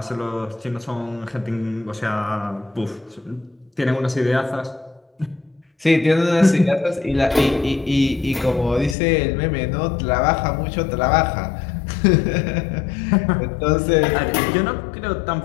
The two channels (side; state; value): right; drops out; at 9.0 s